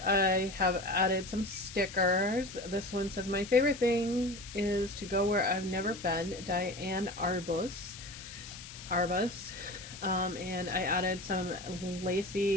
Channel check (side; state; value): left; noise; hiss, 14 dB below the sound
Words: have added some stickers. This one says, "My favorite thing is to go where I've never been, Diane Arbus. And I added some